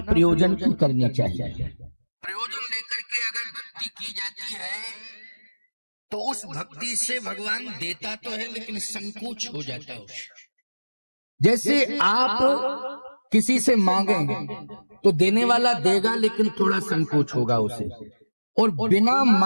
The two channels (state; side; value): inverted; both; correlation -1.00